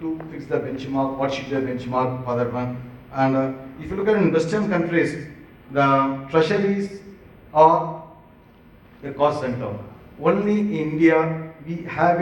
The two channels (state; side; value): identical; both; correlation 1.00